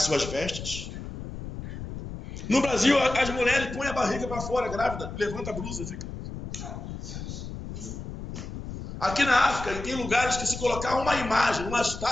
suas vestes. No Brasil, as mulheres põem a barriga para fora, grávida, levanta a blusa e fica. Aqui na África, tem lugares que se colocar uma imagem, uma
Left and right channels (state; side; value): noise; left; rumble, 9 dB below the sound